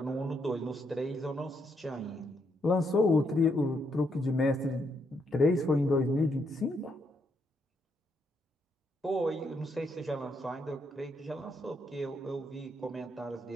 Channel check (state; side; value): normal; both; correlation 0.77